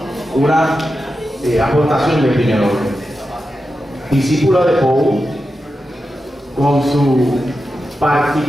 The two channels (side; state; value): both; normal; correlation 0.90